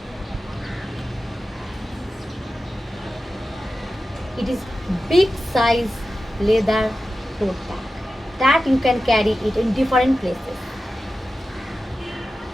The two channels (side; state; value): both; normal; correlation 0.93